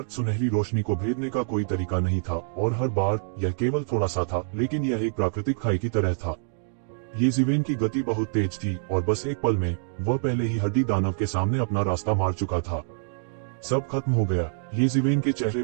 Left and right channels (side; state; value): left; silent; digital silence